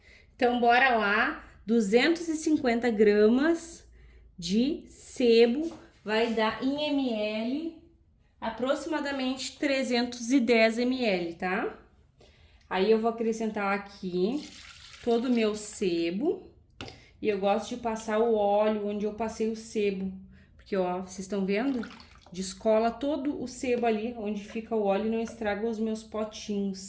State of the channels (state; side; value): identical; both; correlation 1.00